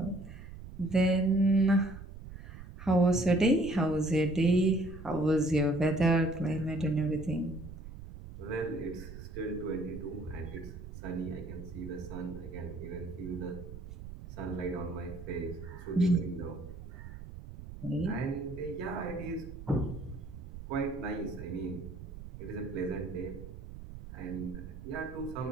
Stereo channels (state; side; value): noise; right; rumble, 12 dB below the sound